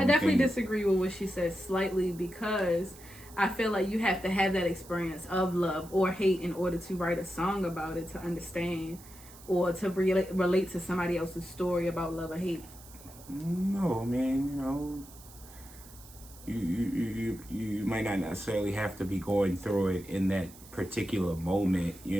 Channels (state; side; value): noise; right; hiss, 20 dB below the sound